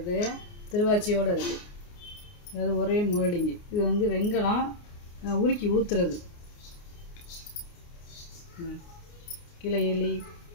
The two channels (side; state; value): right; late; 29 ms